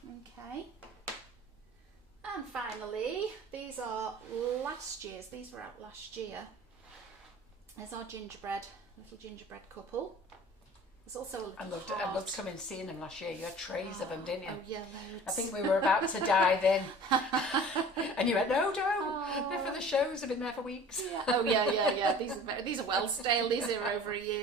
Okay. And finally, these are last year's. These were out last year. There's our little gingerbread couple. There's also a little I loved coming and seeing them last year. You had trays of them, didn't you? Oh yeah, loads. I think we were about to dive in. And you went, no, don't. They're for the shows. They've been there for weeks. Yeah. Oh yeah. These are well stale. These are over a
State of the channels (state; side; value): normal; both; correlation 0.44